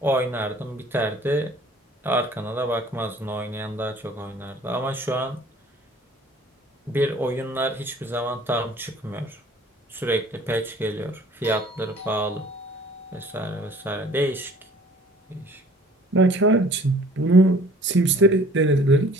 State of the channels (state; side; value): normal; both; correlation 0.52